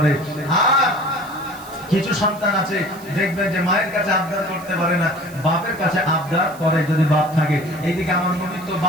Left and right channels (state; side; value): noise; right; hiss, 20 dB below the sound